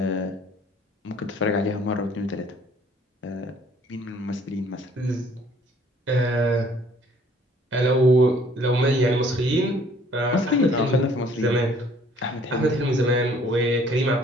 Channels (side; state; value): both; normal; correlation 0.58